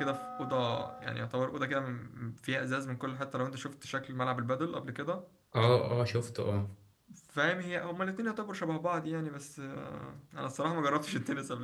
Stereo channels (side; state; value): both; identical; correlation 1.00